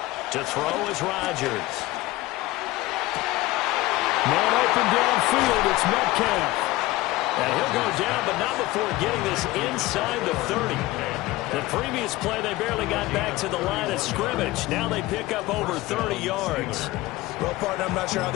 To throw is Rodgers. Man open downfield, it's Metcalf. And he'll go down, but not before getting this inside the 30. The previous play, they barely got back to the line of scrimmage. Now they pick up over 30 yards. Well, partner, I'm not sure how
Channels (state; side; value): quieter; right; 18.7 dB